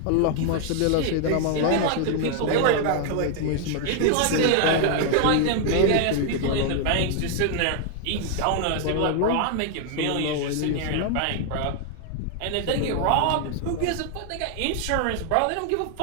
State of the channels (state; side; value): different; both; correlation 0.00